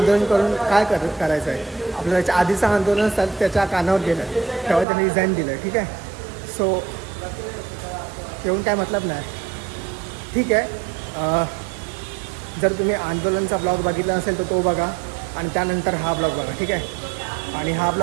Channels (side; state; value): left; drops out; at 4.9 s